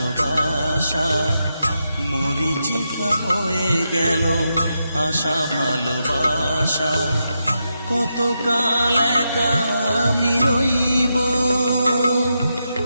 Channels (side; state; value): both; inverted; correlation -0.85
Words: মরিচিকা হয়ে গেল আশা ভালোবাসা। কতকাল একা আমি রইব,